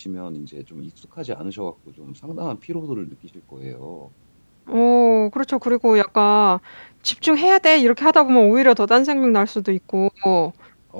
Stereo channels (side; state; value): both; inverted; correlation -1.00